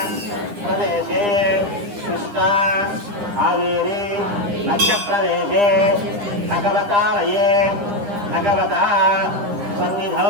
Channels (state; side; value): late; left; 9.9 ms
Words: ప్రదేశే కృష్ణా కావేరీ మధ్యప్రదేశే భగవతాలయే భగవతా